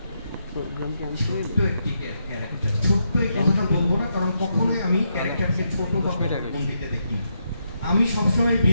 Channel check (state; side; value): inverted; both; correlation -0.80